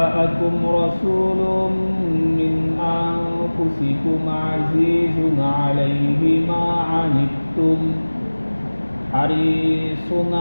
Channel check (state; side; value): inverted; both; correlation -1.00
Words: رسول من أنفسكم عزيز عليه ما عنتم حريص